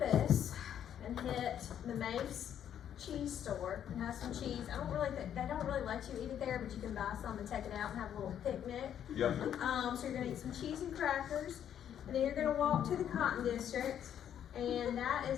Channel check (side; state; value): right; quieter; 9.7 dB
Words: and hit the Mace cheese store and have some cheese. They don't really let you eat it there, but you can buy some and take it out and have a little picnic. Yep. So you're gonna eat some cheese and crackers, and then you're gonna walk to the Cotton District, and that